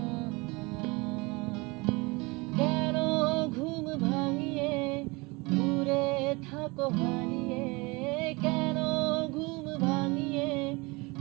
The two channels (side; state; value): left; quieter; 25.8 dB